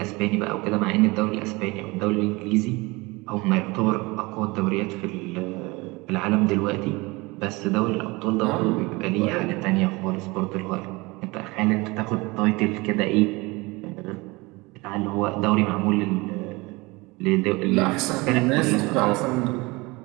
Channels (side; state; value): left; quieter; 24.0 dB